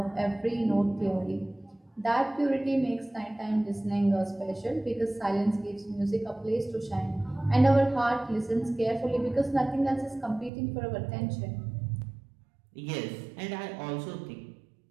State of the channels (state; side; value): drops out; left; at 10.5 s